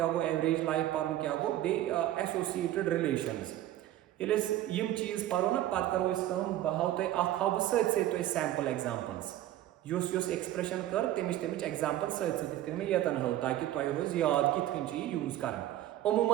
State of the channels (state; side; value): quieter; left; 13.5 dB